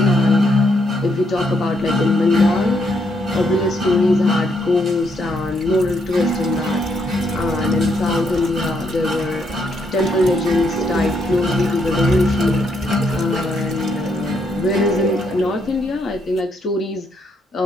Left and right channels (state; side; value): normal; both; correlation 0.75